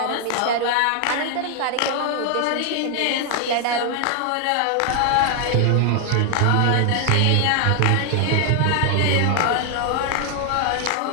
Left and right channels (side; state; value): both; different; correlation 0.00